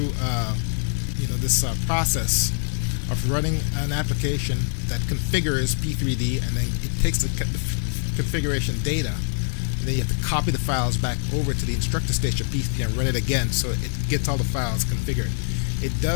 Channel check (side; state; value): right; silent; 63 dB below the other